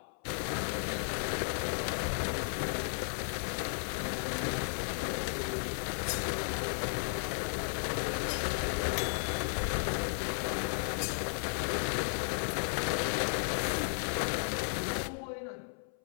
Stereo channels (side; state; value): right; silent; 55 dB below the other